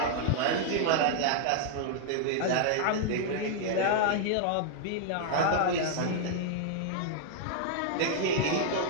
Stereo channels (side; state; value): both; different; correlation 0.00